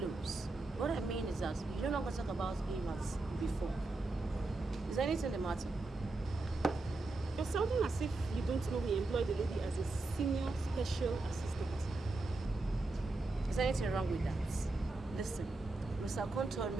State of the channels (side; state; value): left; quieter; 3.2 dB